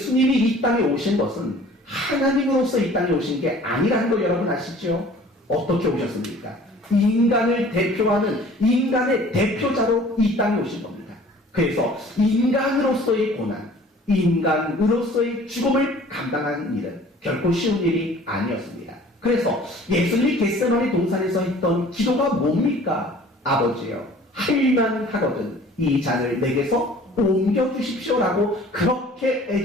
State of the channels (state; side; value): normal; both; correlation 0.49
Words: 이 땅에 오신 것은 하나님으로서 이 땅에 오신 게 아니라는 거 여러분 아시죠? 어떻게 오셨습니까? 인간을 대표하는 인간의 대표자로 이 땅에 오신 겁니다. 그래서 인간으로서의 고난, 인간으로서의 죽음을 감당하는 일은 결코 쉬운 일이 아니었습니다. 그래서 예수님이 겟세마네 동산에서 했던 기도가 뭡니까? 아버지여, 할만 하거든 이 잔을 내게서 옮겨주십시오라고 그렇게